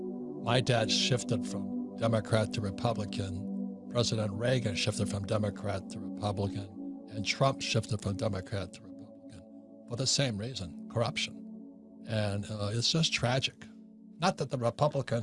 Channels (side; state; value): both; identical; correlation 1.00